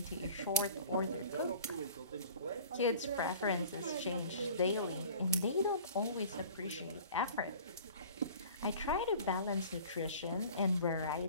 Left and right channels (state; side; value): inverted; both; correlation -0.44